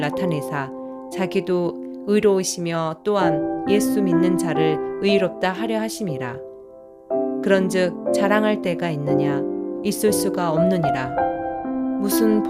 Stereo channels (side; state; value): both; identical; correlation 1.00